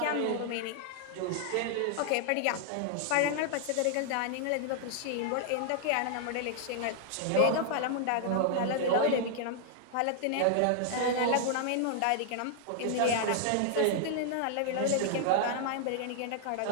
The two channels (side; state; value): both; different; correlation 0.00